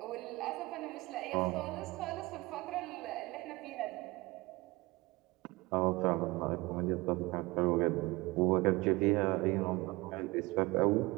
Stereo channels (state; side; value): quieter; left; 22.1 dB